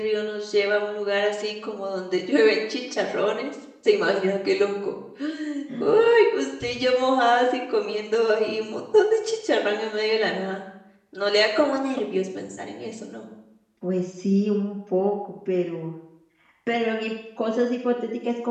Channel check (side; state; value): both; identical; correlation 1.00